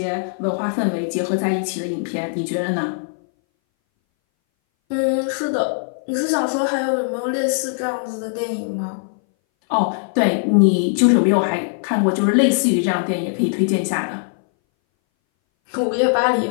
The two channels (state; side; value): silent; right; 61 dB below the other